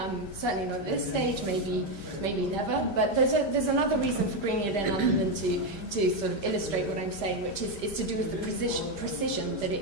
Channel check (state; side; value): late; right; 5.0 ms